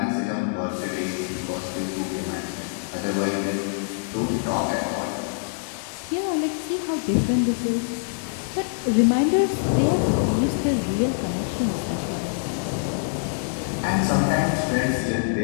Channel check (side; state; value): right; silent; digital silence